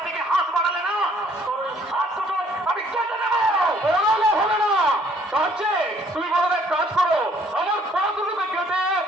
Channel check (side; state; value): both; normal; correlation 0.62